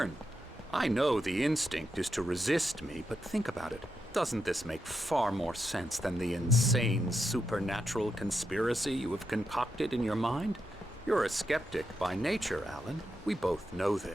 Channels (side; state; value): both; normal; correlation 0.85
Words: I know the instinct is to resist me, but think about it. Doesn't this make far more sense than the insane supernatural conspiracy you have concocted in your mind? You're a skeptic by nature, Alan. We both know